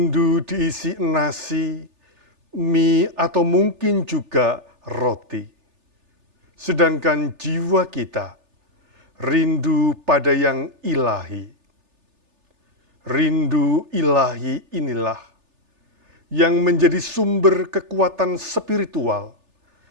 diisi nasi, mie, atau mungkin juga roti. Sedangkan jiwa kita rindu pada yang ilahi. Rindu ilahi inilah yang menjadi sumber kekuatan spiritual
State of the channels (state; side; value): late; left; 3.4 ms